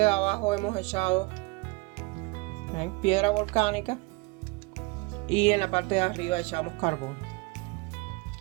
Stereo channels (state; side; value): quieter; left; 26.5 dB